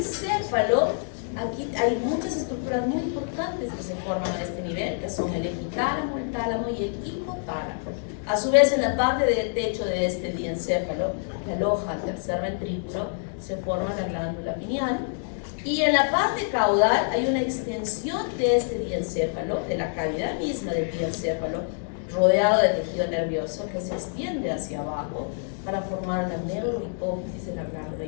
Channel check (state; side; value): silent; right; 61 dB below the other